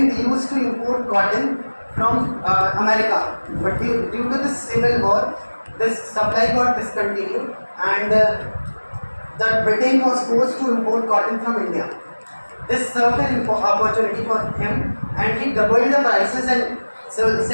used to import cotton from America, but due to the Civil War, this supply got discontinued, and the Britain was forced to import cotton from India. This served an opportunity for him, and he doubled the prices and sell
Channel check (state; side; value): inverted; both; correlation -1.00